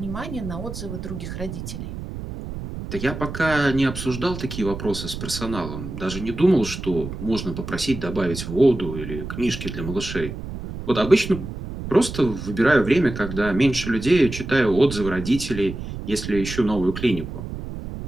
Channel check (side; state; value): right; noise; rumble, 8 dB below the sound